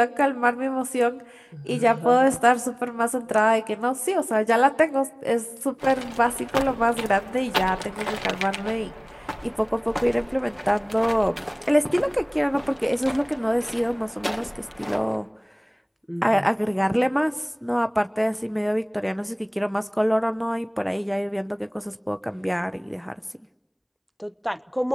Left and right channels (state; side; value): identical; both; correlation 1.00